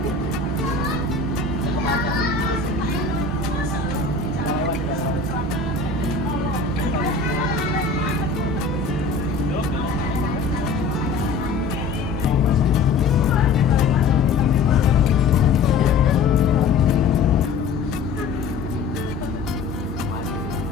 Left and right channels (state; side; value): quieter; right; 4.2 dB